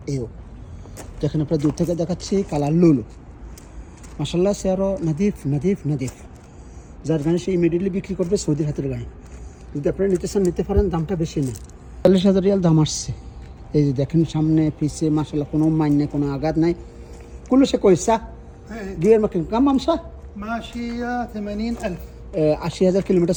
এও দেখেন, আপনার দূর থেকে দেখাচ্ছি, কালার লুলু মাশাল্লাহ। সে আরও নাদিফ নাদিফ নাদিফ। যার গাড়ি সে ইমিডিয়েটলি বিক্রি করবে, সৌদির হাতের গাড়ি। যদি আপনারা নিতে চান নিতে পারেন, দামটা বেশি নেই, 40,000 রিয়াল দাম আসছে। এই যে দেখেন, সামনে পিছে মাশাল্লাহ কোনো মাইন নেই, কোনো আঘাত নাই। কুল্লু সে কইসা গিয়ার মার্কিং কাম আমসা ماشية 80,000. 80,000 كيلومتر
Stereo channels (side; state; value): both; identical; correlation 1.00